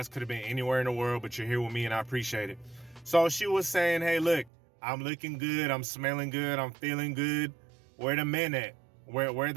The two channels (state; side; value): drops out; left; at 4.5 s